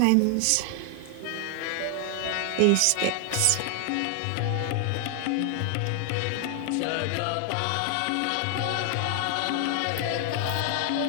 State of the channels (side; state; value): both; different; correlation 0.00